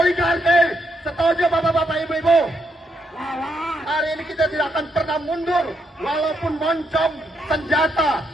Setuju bapak-bapak, ibu-ibu? Hari ini kita tidak akan pernah mundur, walaupun moncong senjata,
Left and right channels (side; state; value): both; normal; correlation 0.78